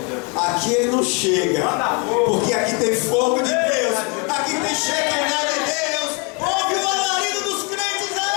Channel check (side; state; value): right; quieter; 32.8 dB